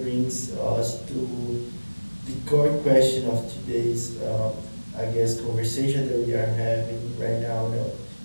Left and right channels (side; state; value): both; inverted; correlation -1.00